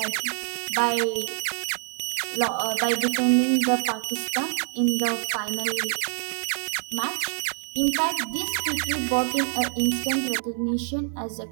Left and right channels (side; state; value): left; silent; 60 dB below the other